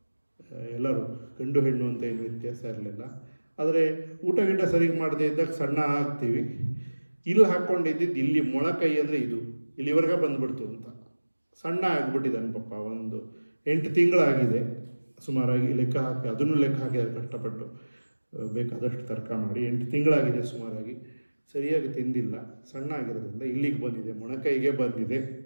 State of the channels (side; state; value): both; inverted; correlation -1.00